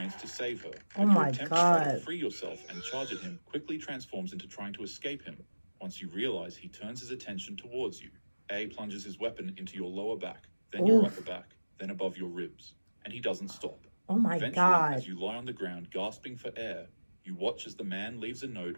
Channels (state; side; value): inverted; both; correlation -1.00